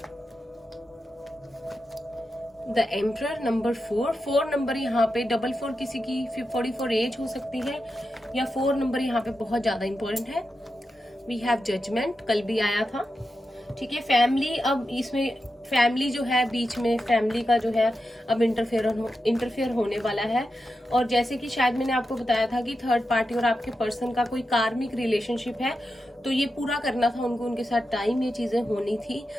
द एम्परर नंबर 4 नंबर यहाँ पे 44 किसी की 44 एज हो सकती है या 4 नंबर यहाँ पे बहुत ज्यादा इंपॉर्टेंट है। वी हैव जजमेंट, कल भी आया था, ठीक है। फैमिली, अब इसमें फैमिली जो है बीच में, फैमिली का जो है अब इंटरफेयर होने वाला है। और जैसे कि शायद मैंने आपको बताया था कि थर्ड पार्टी और आपके पर्सन का कोई कार्मिक रिलेशनशिप है, तो ये पूरा करना था उनको, उनके साथ टाइम, ये चीजें होनी थी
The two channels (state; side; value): normal; both; correlation 0.89